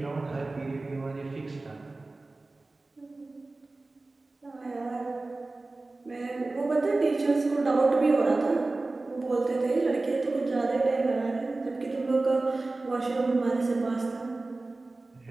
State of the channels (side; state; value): left; quieter; 3.2 dB